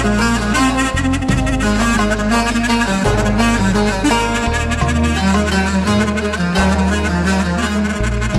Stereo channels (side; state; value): both; identical; correlation 1.00